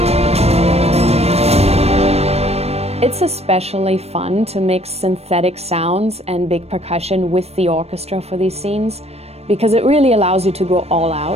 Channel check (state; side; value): late; left; 0.30 ms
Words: It's especially fun to mix synthetic sounds and big percussion with the orchestra for these scenes, because it really allows you to go all